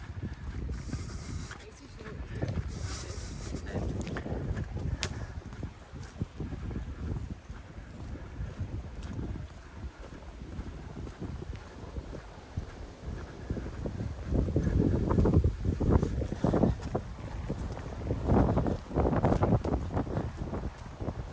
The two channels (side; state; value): both; identical; correlation 1.00